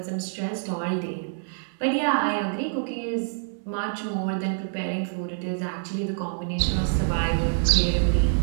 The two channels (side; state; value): left; silent; 60 dB below the other